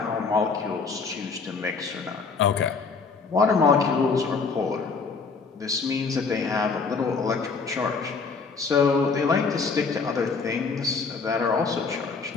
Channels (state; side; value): quieter; right; 4.8 dB